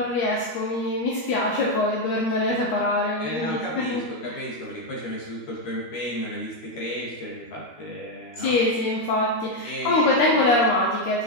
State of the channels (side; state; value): right; late; 13 ms